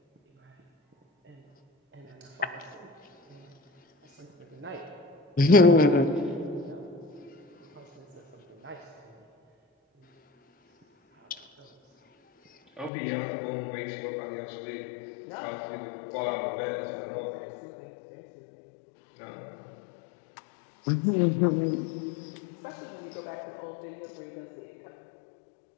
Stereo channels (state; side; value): drops out; right; at 12.9 s